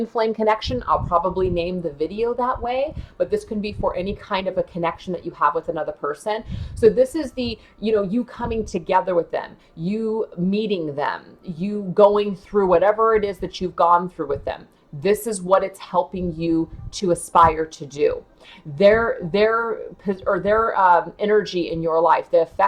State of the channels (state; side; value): identical; both; correlation 1.00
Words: flame connection. I'll probably name the video that way, but this can be for any kind of a connection that you have with another person. So this is the, you coming together with them, you meeting them, you going through whatever it is that you've gone through with them. This is what it's helping you to aspire to do. Their energy in your life, the